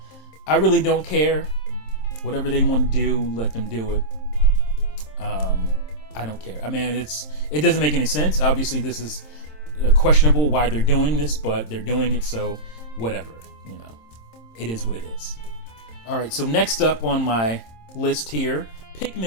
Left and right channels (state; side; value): late; right; 27 ms